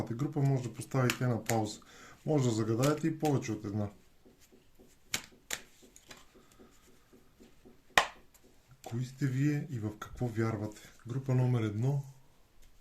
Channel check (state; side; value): identical; both; correlation 1.00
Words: група, може да поставите на пауза. Може да загадаете и повече от една. Кои сте вие и в какво вярвате? Група номер 1,